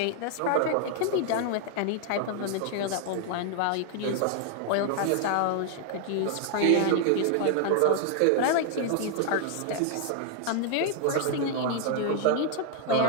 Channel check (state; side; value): different; both; correlation 0.00